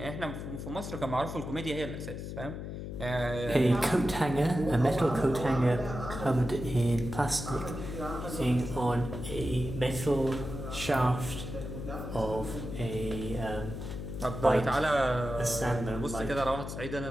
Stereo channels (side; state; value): left; noise; hum, 7 dB below the sound